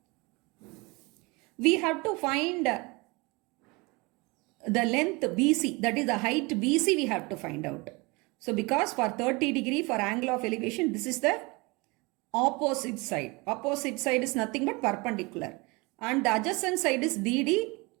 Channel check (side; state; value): left; quieter; 26.0 dB